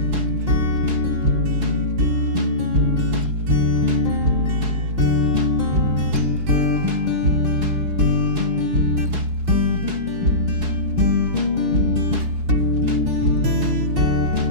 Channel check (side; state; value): left; late; 4.7 ms